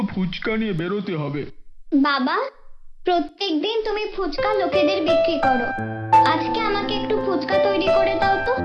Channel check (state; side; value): identical; both; correlation 1.00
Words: ফুচকা নিয়ে বেরোতে হবে। বাবা, প্রত্যেকদিন তুমি ফুচকা লোকেদের বিক্রি করো, আজকে আমাকে একটু ফুচকা তৈরি করে দাও তো,